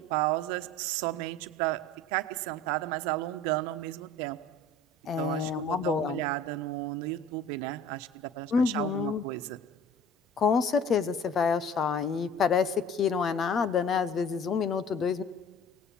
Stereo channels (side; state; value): both; normal; correlation 0.45